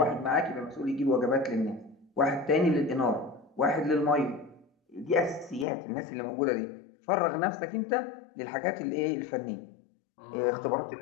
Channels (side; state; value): right; drops out; at 5.7 s